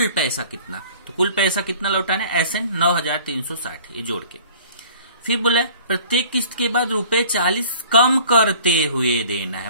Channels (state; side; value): inverted; both; correlation -0.49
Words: पैसा कितना, तो कुल पैसा कितना लौटाना है एसएन 9,360, ये जोड़ के। फिर बोला प्रत्येक किस्त के बाद रुपए 40 कम करते हुए देना